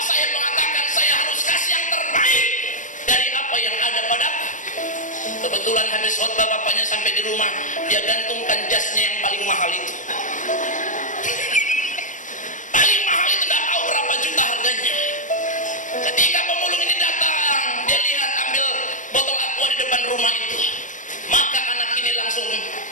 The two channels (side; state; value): right; late; 0.37 ms